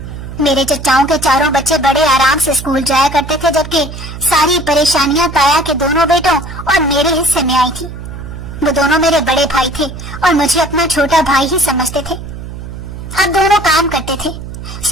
میرے چچاؤں کے چاروں بچے بڑے آرام سے اسکول جایا کرتے تھے، جبکہ ساری پریشانیاں تایا کے دونوں بیٹوں اور میرے حصے میں آئی تھی۔ وہ دونوں میرے بڑے بھائی تھے اور مجھے اپنا چھوٹا بھائی ہی سمجھتے تھے۔ اب دونوں کام کرتے تھے،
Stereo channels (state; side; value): noise; right; hum, 11 dB below the sound